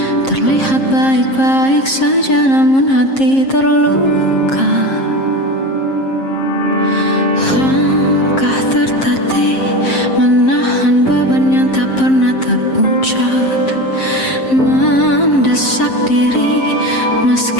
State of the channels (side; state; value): right; late; 7.5 ms